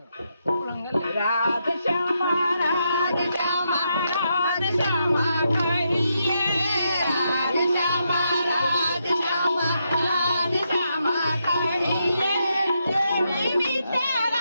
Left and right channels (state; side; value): inverted; both; correlation -0.81